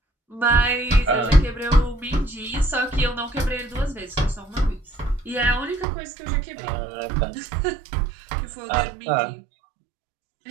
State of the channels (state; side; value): drops out; left; at 5.9 s